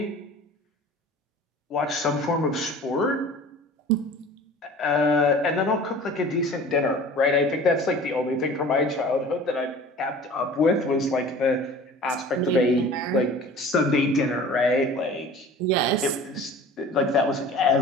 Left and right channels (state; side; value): normal; both; correlation 0.43